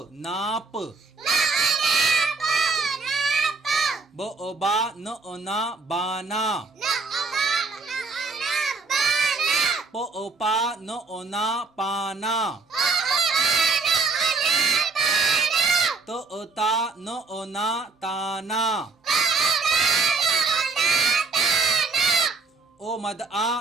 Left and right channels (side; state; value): left; quieter; 4.1 dB